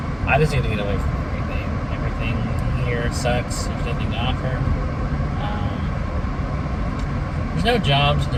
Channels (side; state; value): both; identical; correlation 1.00